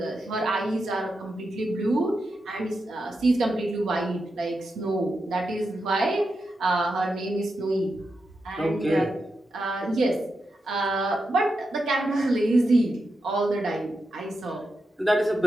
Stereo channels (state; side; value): normal; both; correlation 0.87